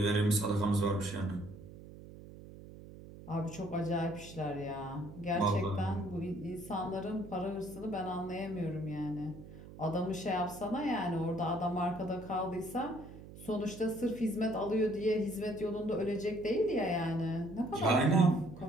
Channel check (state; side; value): noise; right; hum, 16 dB below the sound